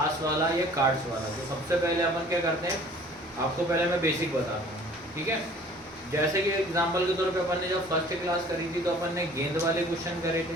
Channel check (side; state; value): both; normal; correlation 0.51